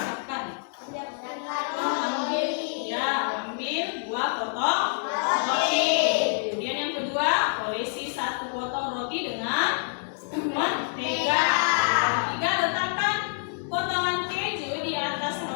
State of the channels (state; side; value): silent; right; digital silence